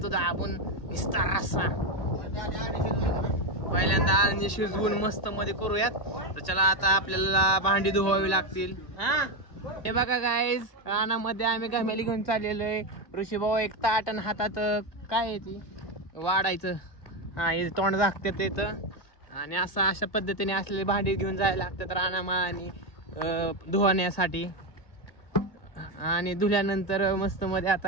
दाबून, निस्ता रस्सा. पहिल्यांदा आणि शिजवून मस्त मध्ये करूयात. तर चला आता आपल्याला भांडी धुवावी लागतील. हे बघा गाईज, रानामध्ये आम्ही घमेली घेऊन चाललेलो आहे. ऋषी भाऊ एक ताट आणि हातात काय आहे ती वाढायचं, हे तोंड झाकतात येतं. आणि अशा पद्धतीने असलेले भांडी घेऊन जायला लागतात रानामा आणि धुवाण्यासाठी. आणि धुल्यानंतर मस्त मध्ये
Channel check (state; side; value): late; right; 1.8 ms